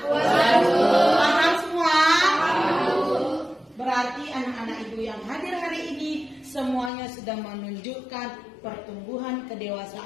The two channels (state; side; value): drops out; right; at 6.9 s